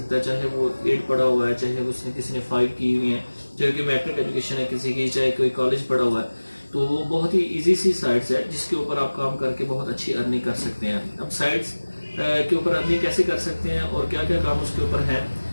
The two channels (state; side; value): inverted; both; correlation -1.00